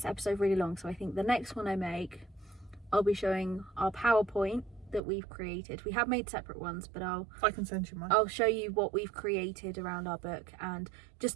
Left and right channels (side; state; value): left; drops out; at 5.0 s